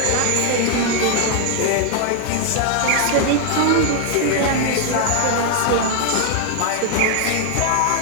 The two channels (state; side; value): different; both; correlation 0.00